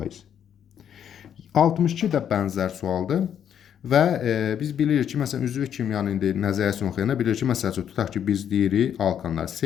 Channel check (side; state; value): right; quieter; 9.1 dB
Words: 62 də bənzər sualdır. Və biz bilirik ki, məsələn, üzvü kimyanın indi nəzəriyyəsini oxuyanda bilirik ki, məsəl üçün, tutaq ki, biz deyirik alkanlar